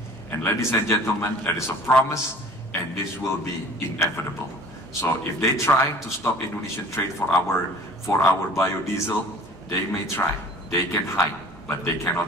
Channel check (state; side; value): normal; both; correlation 0.46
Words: And ladies and gentlemen, that is a promise, and this will be inevitable. So if they try to stop Indonesian trade for our biodiesel, they may try. They can hide, but they